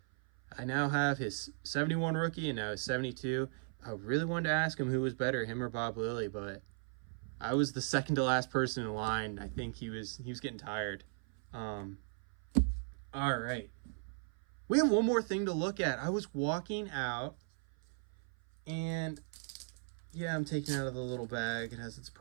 I now have his 71 rookie and now his 72. I really wanted to ask him who was better, him or Bob Lilly, but I was the second to last person in line. I think he was getting tired. All right. We have one more thing to look at. I was walking out and yeah, I'm taking it out of the little bag. It has its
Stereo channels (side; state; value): left; silent; 53 dB below the other